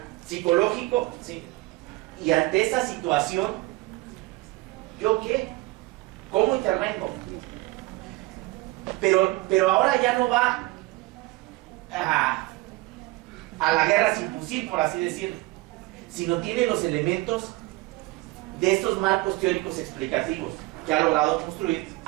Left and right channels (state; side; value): quieter; left; 21.2 dB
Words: psicológico, ¿sí? Y ante esa situación, ¿yo qué? ¿Cómo intervengo? Pero ahora ya no va a la guerra sin fusil, por así decirlo, sino tiene los elementos de estos marcos teóricos explicativos que ha logrado construir